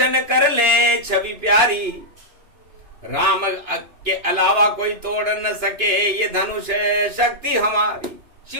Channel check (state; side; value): late; left; 2.9 ms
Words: कर ले छवि प्यारी, राम के अलावा कोई तोड़ न सके ये धनुष शक्ति हमारी।